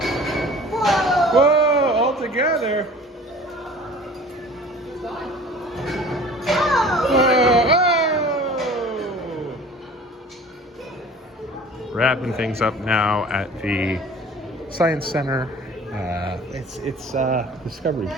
Whoa! All together. Whoa! Wrapping things up now at the Science Center. It's Discovery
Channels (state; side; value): normal; both; correlation 0.46